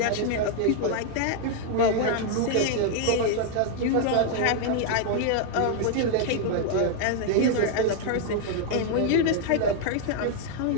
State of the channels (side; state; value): both; different; correlation 0.00